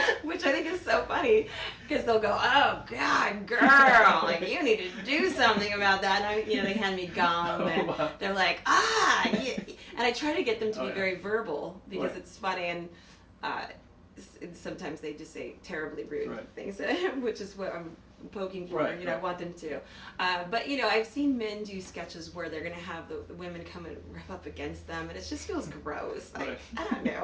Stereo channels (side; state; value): both; identical; correlation 1.00